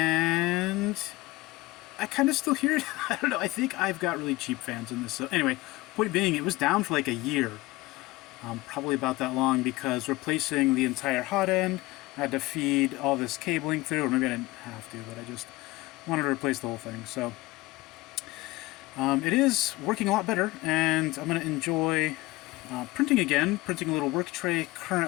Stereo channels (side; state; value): right; quieter; 20.3 dB